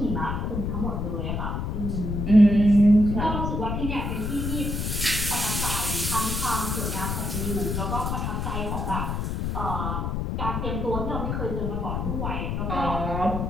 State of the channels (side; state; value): left; noise; rumble, 2 dB below the sound